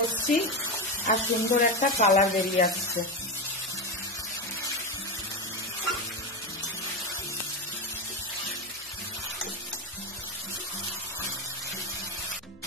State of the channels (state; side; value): noise; left; hum, 27 dB below the sound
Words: আর সুন্দর একটা কালার বেরিয়ে আসছে।